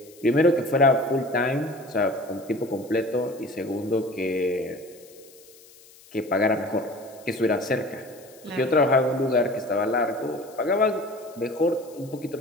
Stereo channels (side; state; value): left; noise; hiss, 24 dB below the sound